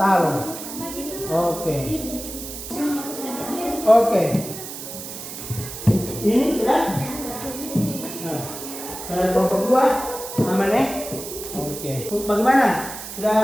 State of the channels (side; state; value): right; noise; hiss, 10 dB below the sound